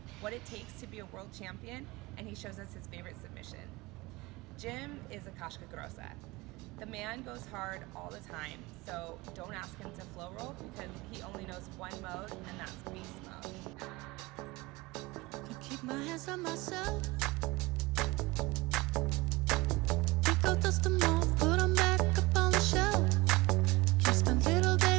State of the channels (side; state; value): left; quieter; 22.1 dB